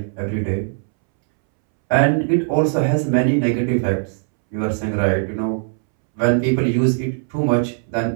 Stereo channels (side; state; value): left; silent; 66 dB below the other